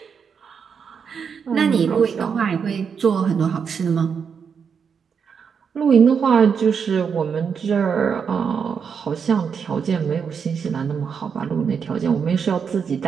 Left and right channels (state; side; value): quieter; left; 6.5 dB